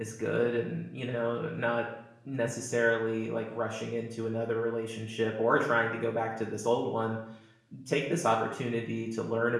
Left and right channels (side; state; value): both; identical; correlation 1.00